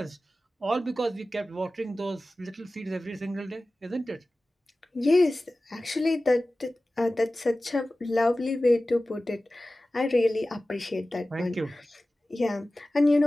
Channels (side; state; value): both; normal; correlation 0.96